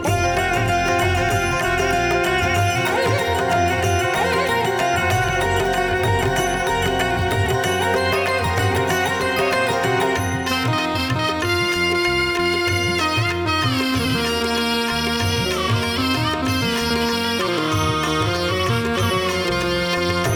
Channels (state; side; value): identical; both; correlation 1.00